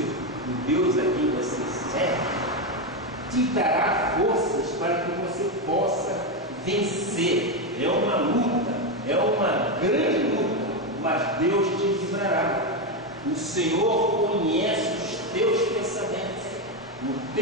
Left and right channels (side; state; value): both; normal; correlation 0.09